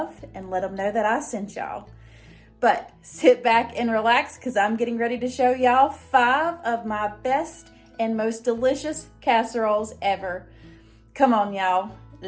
and let them know that I sent y'all. But sit back and relax because I'm getting ready to show y'all 5 of my best and most delicious casseroles ever. Come on y'all,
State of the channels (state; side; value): identical; both; correlation 1.00